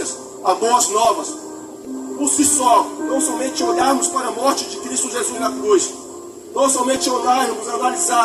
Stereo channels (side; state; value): both; identical; correlation 1.00